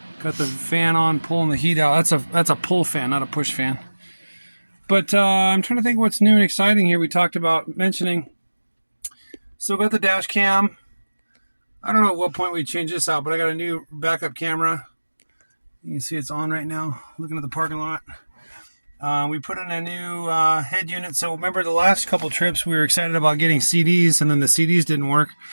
got the fan on, pulling the heat out. That's a pull fan, not a push fan. But I'm trying to think what's new and exciting here. We talked about mentioning. Still got the dash cam. I don't know at what point we change this out, but I got a new backup camera. You can see it's on right now, looking at the parking lot. We put in a new head unit. So remember the last couple trips we were excited about getting CDs, and then the CDs didn't work.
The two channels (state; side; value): inverted; both; correlation -1.00